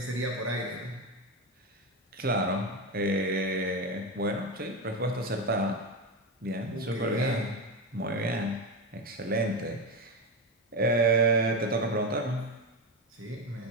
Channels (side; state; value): both; normal; correlation 0.15